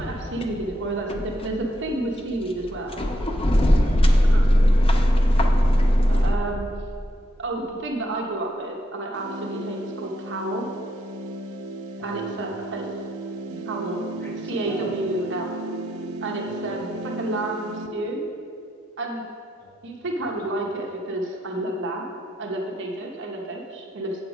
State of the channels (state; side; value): normal; both; correlation 0.79